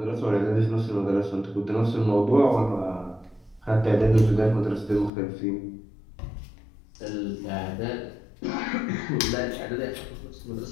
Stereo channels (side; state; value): right; drops out; at 5.1 s